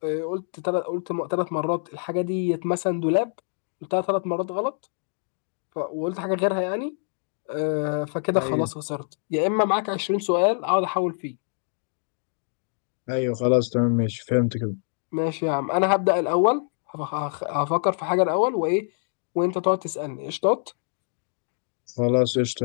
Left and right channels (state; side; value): silent; right; 61 dB below the other